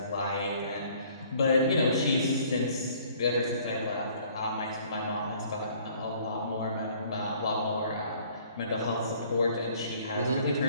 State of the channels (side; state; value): both; inverted; correlation -0.57